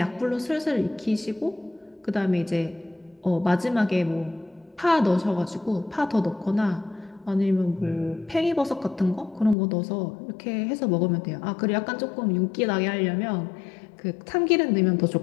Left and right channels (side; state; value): right; drops out; at 9.6 s